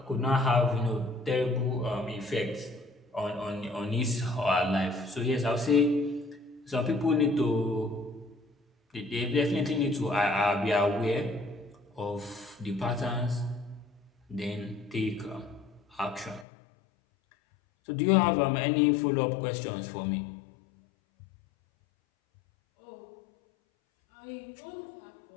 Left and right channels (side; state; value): right; drops out; at 16.4 s